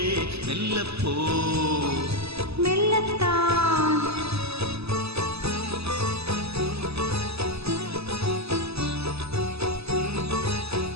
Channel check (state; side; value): late; left; 0.79 ms